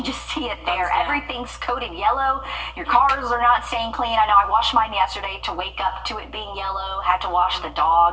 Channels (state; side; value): identical; both; correlation 1.00